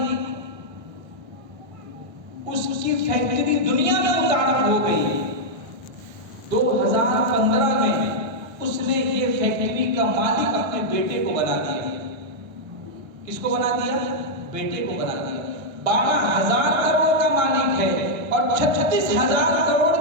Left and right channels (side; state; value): left; late; 1.5 ms